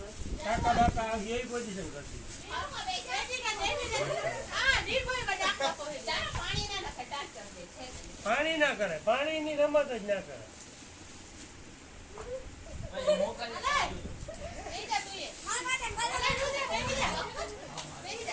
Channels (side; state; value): both; identical; correlation 1.00